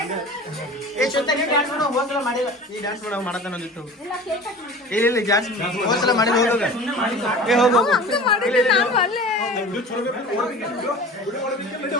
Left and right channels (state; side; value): normal; both; correlation 0.39